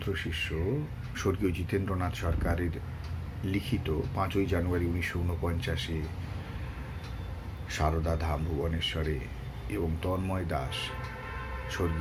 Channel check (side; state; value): both; identical; correlation 1.00